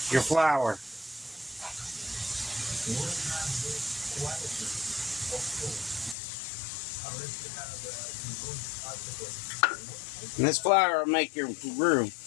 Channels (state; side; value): drops out; right; at 6.2 s